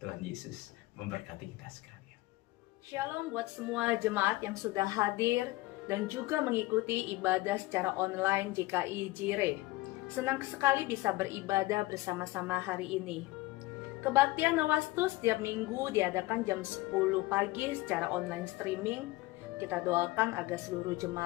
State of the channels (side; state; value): right; quieter; 19.9 dB